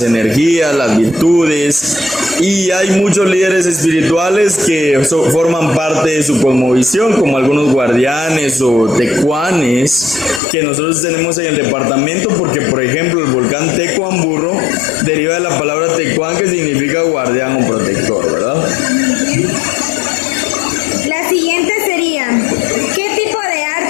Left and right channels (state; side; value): drops out; right; at 10.4 s